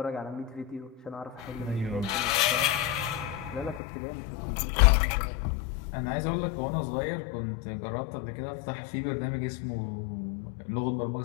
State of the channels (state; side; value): drops out; right; at 3.8 s